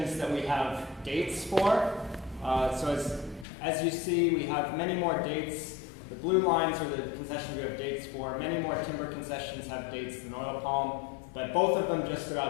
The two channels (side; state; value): right; drops out; at 3.5 s